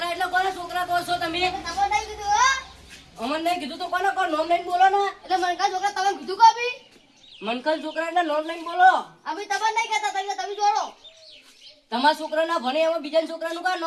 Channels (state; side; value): identical; both; correlation 1.00